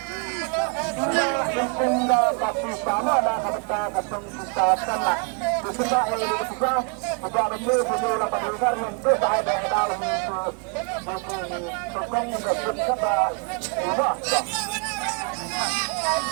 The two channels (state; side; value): quieter; left; 36.5 dB